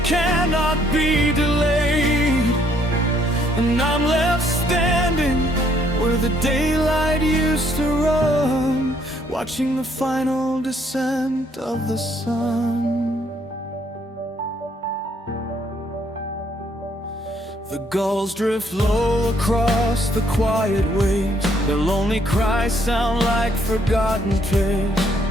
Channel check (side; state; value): both; normal; correlation 0.68